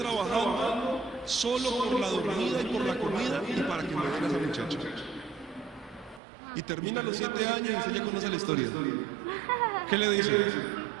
solo por la dormida y por la comida y para que me den a esa muchacha. Y termina los 7 años y usted ya conoce la historia. ¿Qué le dice?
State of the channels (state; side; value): drops out; left; at 6.2 s